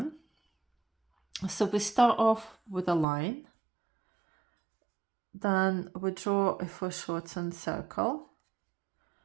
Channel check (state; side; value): drops out; left; at 3.1 s